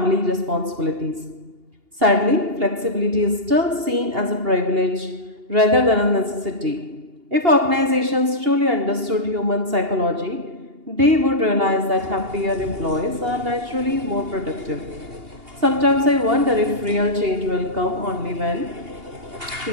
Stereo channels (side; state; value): left; late; 2.8 ms